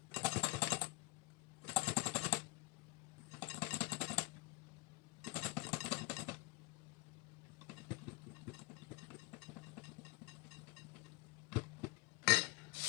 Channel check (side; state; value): right; quieter; 21.5 dB